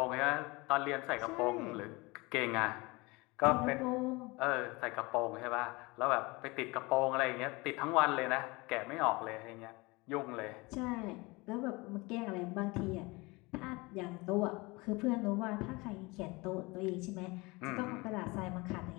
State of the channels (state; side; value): quieter; right; 24.5 dB